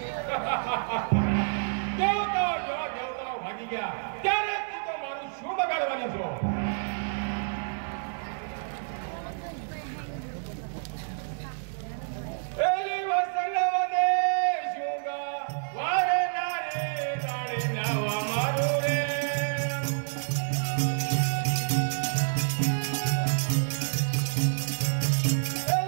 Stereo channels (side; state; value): left; silent; 59 dB below the other